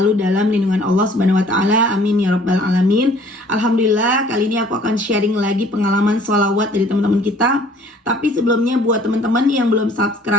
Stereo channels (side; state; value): both; normal; correlation 0.55